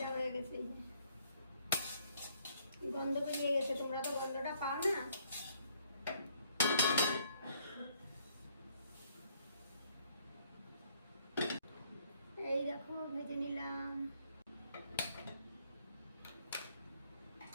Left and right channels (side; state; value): both; inverted; correlation -0.66